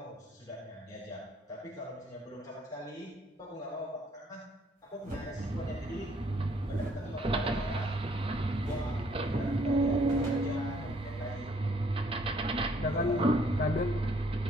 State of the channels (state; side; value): normal; both; correlation 0.65